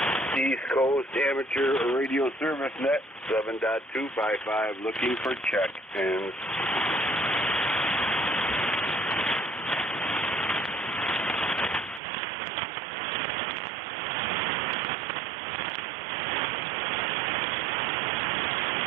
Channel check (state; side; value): drops out; left; at 12.0 s